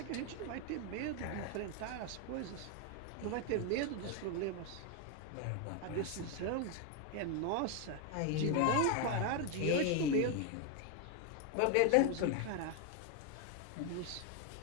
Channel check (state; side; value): different; both; correlation 0.01